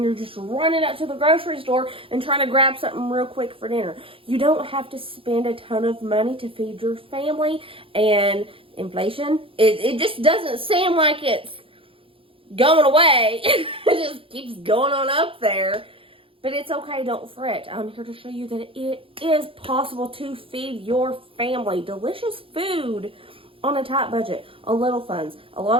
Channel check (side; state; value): left; late; 0.26 ms